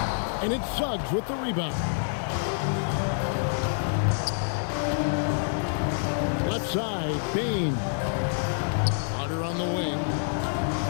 And it's Suggs with the rebound. Left side, Bain. Carter on the wing.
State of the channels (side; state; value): right; silent; digital silence